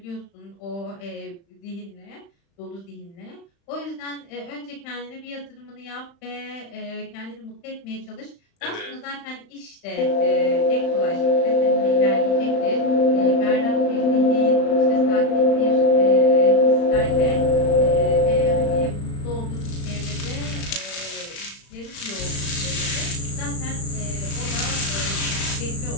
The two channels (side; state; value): right; late; 35 ms